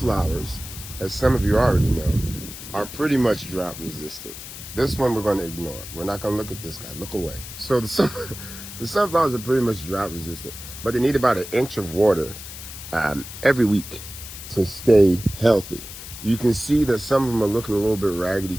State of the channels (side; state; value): left; noise; hiss, 12 dB below the sound